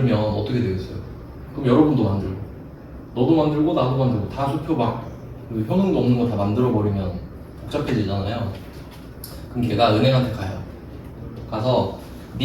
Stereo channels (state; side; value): identical; both; correlation 1.00